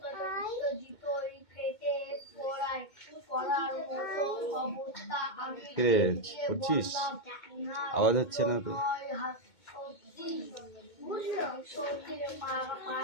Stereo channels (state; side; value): late; right; 2.2 ms